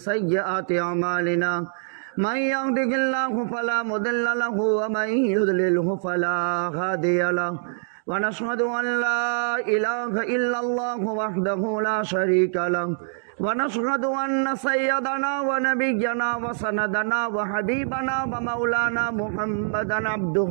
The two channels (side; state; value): left; silent; digital silence